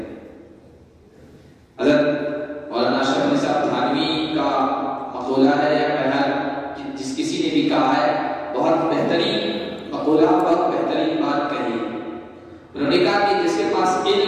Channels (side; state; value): both; identical; correlation 1.00